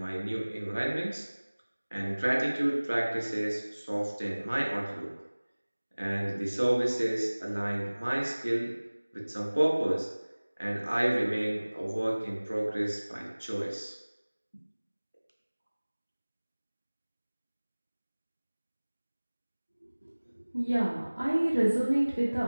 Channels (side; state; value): both; inverted; correlation -1.00